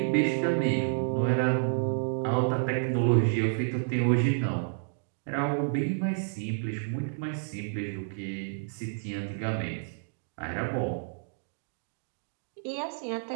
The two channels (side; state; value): left; silent; digital silence